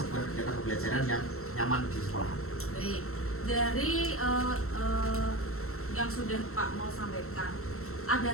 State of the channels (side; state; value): right; late; 0.63 ms